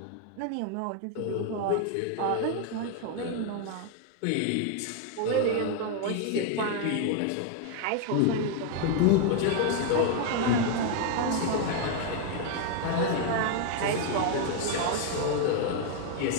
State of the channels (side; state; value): both; different; correlation 0.00